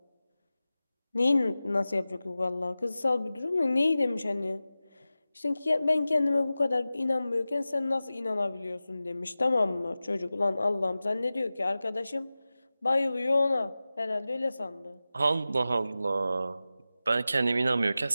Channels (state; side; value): inverted; both; correlation -0.95